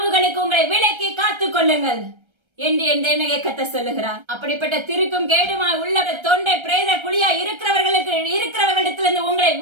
உங்களை விலக்கி காத்துக் கொள்ளுங்கள் என்று என் தேவனுடைய கர்த்தர் சொல்லுகிறார். அப்படிப்பட்ட திருக்கும் கேடுமாய் உள்ள தொண்டை பிரேத குழியா இருக்கிறவர்களிடத்திலிருந்து உங்களை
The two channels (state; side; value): late; left; 1.3 ms